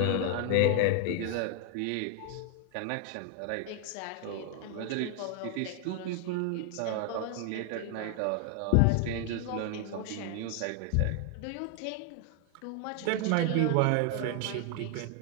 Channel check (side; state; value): both; different; correlation 0.00